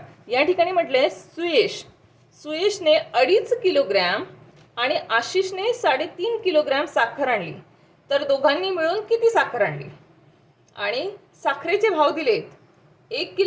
या ठिकाणी म्हटलं आहे सुयशने 2.5 किलोग्रॅम आणि आशिषने 3.5 किलोग्रॅम साखर आणली. तर दोघांनी मिळून किती साखर आणली? आणि साखरेचे भाव दिलेत. 1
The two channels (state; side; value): identical; both; correlation 1.00